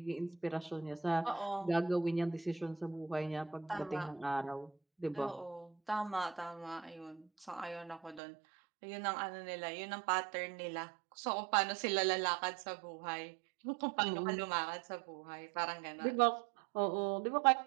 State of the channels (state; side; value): drops out; left; at 8.2 s